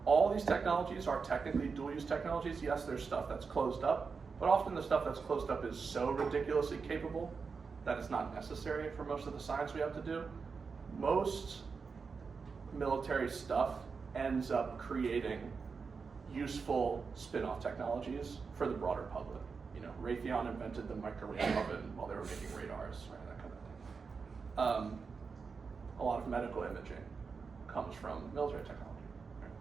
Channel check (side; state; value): left; quieter; 5.1 dB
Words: all these technologies are technically dual-use technologies. Yes, there's stuff that's closed up, but often the stuff that's closed up is so ridiculously capable that it's not necessary for most of the science we have to do. Most military stuff ends up creating useful spin-off technologies for the broader public. Raytheon invented the microwave oven while they were making radars, right? That kind of thing. A lot of medical imaging comes from military technology. Right?